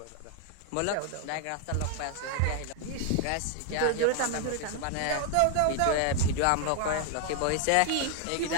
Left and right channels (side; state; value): both; different; correlation 0.00